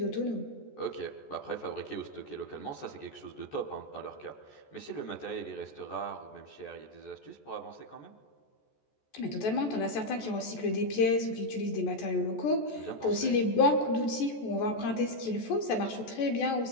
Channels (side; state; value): right; late; 14 ms